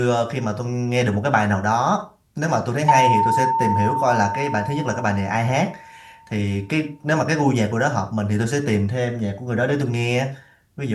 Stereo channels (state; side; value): identical; both; correlation 1.00